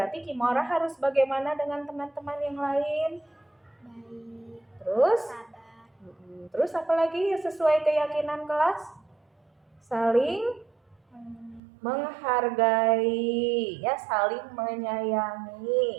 Kimora harus bagaimana dengan teman-teman yang lain? Baik, Terus? sabar. Terus apa lagi sesuai keyakinan kelas? Saling menghargai ya, saling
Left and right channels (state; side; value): drops out; left; at 11.6 s